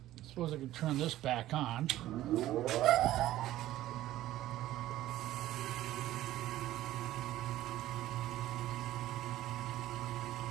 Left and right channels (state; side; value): quieter; left; 14.5 dB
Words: suppose I can turn this back on. Look